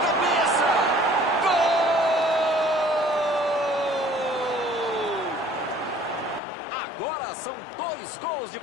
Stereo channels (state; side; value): drops out; right; at 6.4 s